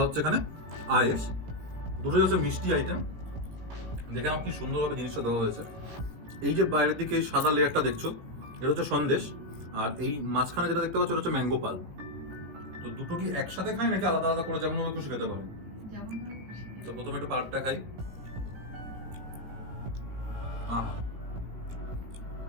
হচ্ছে এখানে আয়েস। দুটোই হচ্ছে মিষ্টি আইটেম। দেখে আমার কি সুন্দরভাবে জিনিসটা দেওয়া হয়েছে। এই যে বাইরের দিকে এই সাদা লেয়ারটা দেখছো, এটা হচ্ছে সন্দেশ, আর এই মাঝখানে যেটা দেখতে পাচ্ছ এটা হচ্ছে ম্যাঙ্গো পাল। তো দুটো কি একসাথে খাই নাকি আলাদা আলাদা করে যেমন আমি খুশি খেতে পারি? যেমন তো প্রথমে একটু পাল্পটা খাই।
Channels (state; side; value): late; left; 17 ms